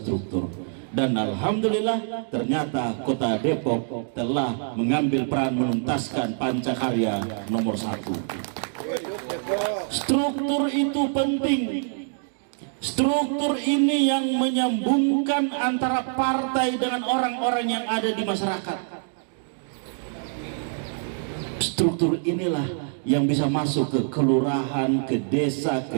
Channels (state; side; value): silent; left; digital silence